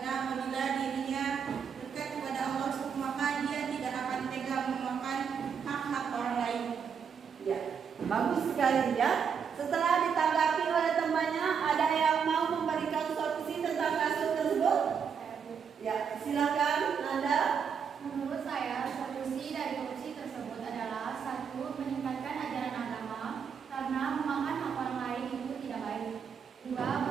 apabila dirinya dekat kepada Allah, maka dia tidak akan tega memakan hak-hak orang lain. Ya, bagus sekali ya. Setelah ditanggapi oleh temannya, ada yang mau memberikan solusi tentang kasus tersebut? Ya, silakan Nanda. Menurut saya, solusi dari korupsi tersebut adalah satu, meningkatkan ajaran agama karena memakan hak orang lain itu tidak baik. Dua,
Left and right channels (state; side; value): quieter; left; 6.8 dB